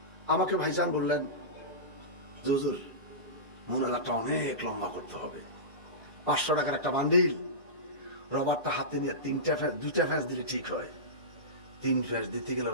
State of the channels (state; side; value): normal; both; correlation -0.19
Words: আমাকে ভাইজান বললেন, হুজুর মুনাজাতটা অনেক লম্বা করতে হবে। 500 টাকার একটা বান্ডিল, রবারটা হাতে নিয়ে 2টা ফ্যাস দিলে ঠিক হয়। 3 ফ্যাস দিতে গেলে